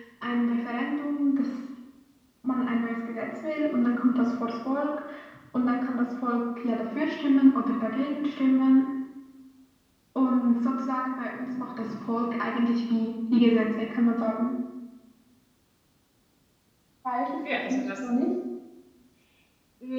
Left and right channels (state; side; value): identical; both; correlation 1.00